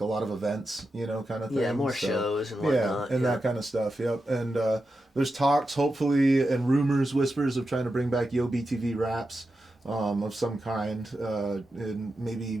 a lot of events, kind of thing. Yeah, more shows and whatnot. Yeah, and that kind of stuff. Yep. And there's talks, hopefully, and rumors, whispers of trying to bring back Yeaux BTV raps. of some kind, and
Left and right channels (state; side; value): normal; both; correlation 0.90